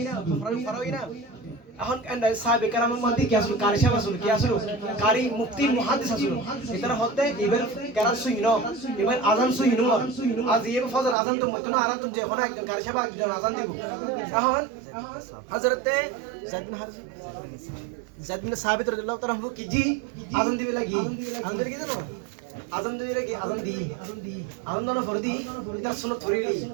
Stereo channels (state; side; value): drops out; left; at 11.2 s